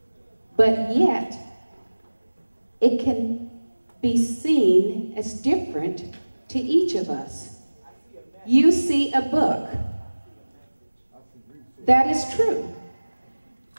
but yet it can be seen as different to each of us? You see a book. That is true.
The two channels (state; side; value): inverted; both; correlation -1.00